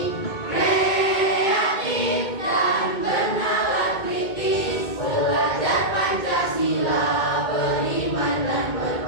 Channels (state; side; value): late; right; 2.2 ms